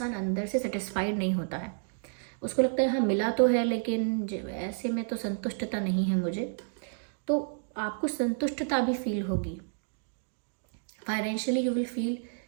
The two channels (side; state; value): left; silent; digital silence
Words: अंदर से सेटिस्फाइड नहीं होता है। उसको लगता है हाँ मिला तो है, लेकिन ऐसे में तो संतुष्टता नहीं है मुझे। तो आपको संतुष्टता भी फील होगी। Financially you will feel